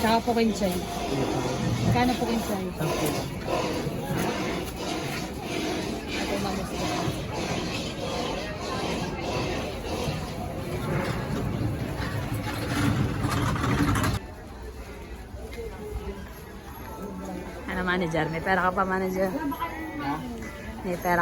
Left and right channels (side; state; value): both; identical; correlation 1.00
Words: po kinchay. Kano po kinchay? Ito mamas ko. Ano manager? May pera ka pa manager? May pera